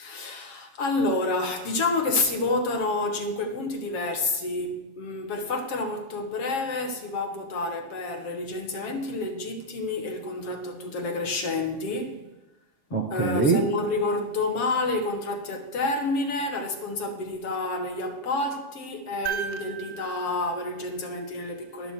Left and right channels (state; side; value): late; right; 7.4 ms